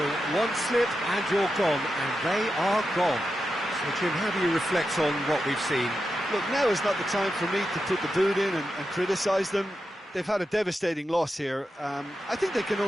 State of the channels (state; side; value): normal; both; correlation 0.89